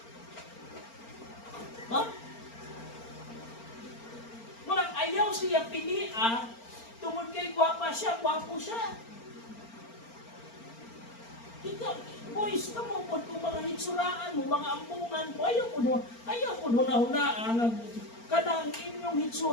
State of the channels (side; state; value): right; late; 4.4 ms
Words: Ha? Murang ayaw siya pilia, tungod kay gwapa siya, gwapo siya. Ikaw, boys, kamo po kung mga hitsuraan mo, mga ampungan mo, ayaw po huna-hunaan. Kanang inyong